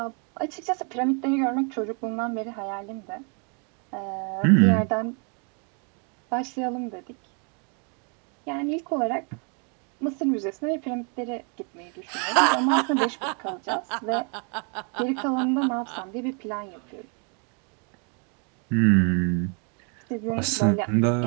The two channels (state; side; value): quieter; left; 37.5 dB